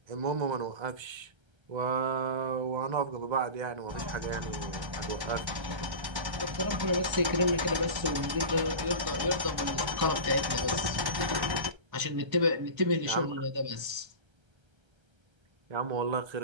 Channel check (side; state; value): left; late; 1.3 ms